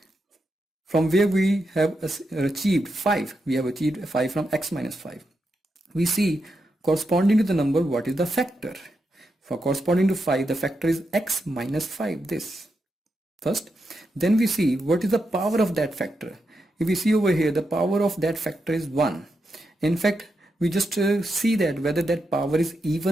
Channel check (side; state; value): both; normal; correlation 0.85